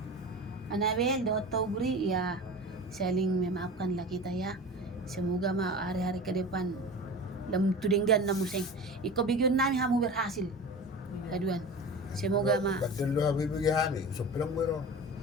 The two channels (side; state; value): both; normal; correlation 0.33